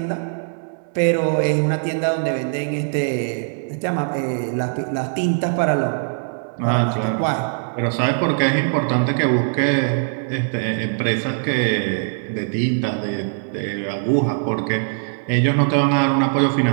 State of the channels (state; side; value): silent; left; 62 dB below the other